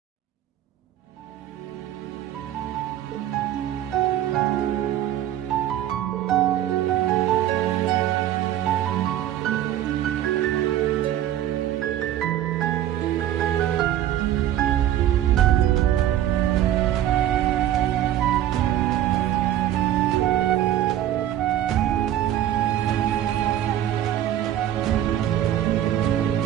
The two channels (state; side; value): quieter; left; 12.0 dB